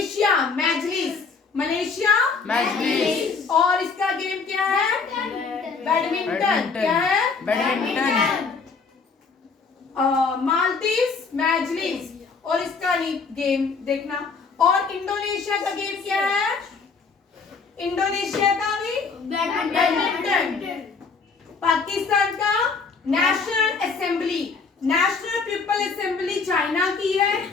मजलिस, मलेशिया मजलिस। और इसका गेम क्या है? बैडमिंटन। क्या है? बैडमिंटन। मालदीव्स मजलिस और इसका गेम देखना। और इंडोनेशिया का गेम क्या है? इंडोनेशिया का भी बैडमिंटन। पाकिस्तान का national assembly, national people assembly China की है,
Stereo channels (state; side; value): quieter; right; 4.8 dB